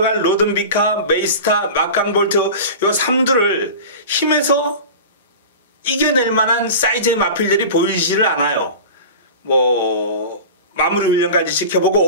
로든비카, 메이스타, 막강볼트 요 3두를 힘에서 이겨낼 만한 사이즈의 마필들이 보이지를 않아요. 뭐 마무리 훈련까지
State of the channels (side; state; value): both; inverted; correlation -0.33